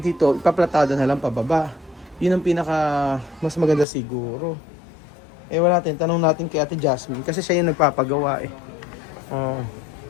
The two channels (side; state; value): right; drops out; at 3.9 s